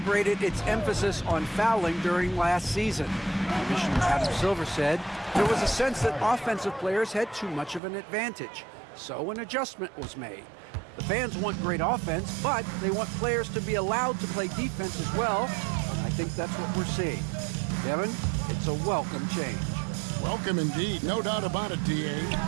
its emphasis on fouling during last season. Commissioner Adam Silver said there was a sense that offensive players had too much of an advantage, so an adjustment was made. The fans want great offense, but they want players to be allowed to play defense as well. I think that's what we're seeing. Kevin, it's a welcome change. Welcome indeed, no doubt about it, D.A.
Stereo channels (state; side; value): drops out; left; at 7.8 s